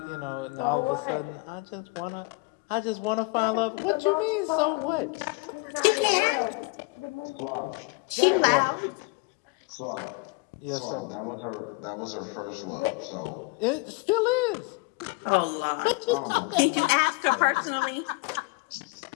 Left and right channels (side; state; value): right; quieter; 26.7 dB